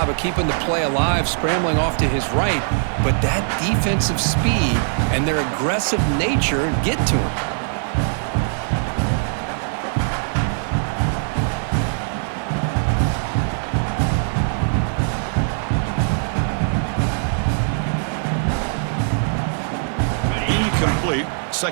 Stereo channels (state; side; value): silent; left; digital silence